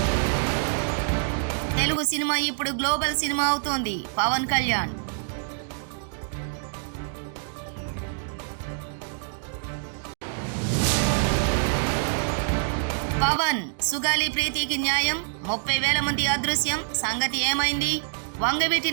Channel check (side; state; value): left; silent; 61 dB below the other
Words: తెలుగు సినిమా ఇప్పుడు గ్లోబల్ సినిమా అవుతోంది. పవన్ కళ్యాణ్. పవన్ సుగాలి ప్రీతికి న్యాయం, 30,000 మంది అదృశ్యం, సంగతి ఏమైంది? వంగవీటి